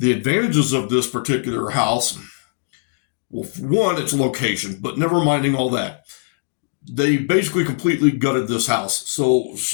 advantages of this particular house, well, one, its location, but never minding all that. They basically completely gutted this house. So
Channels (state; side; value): silent; right; digital silence